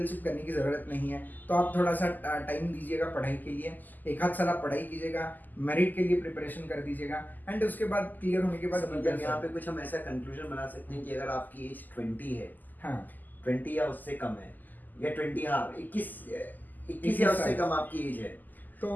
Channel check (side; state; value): right; late; 0.085 ms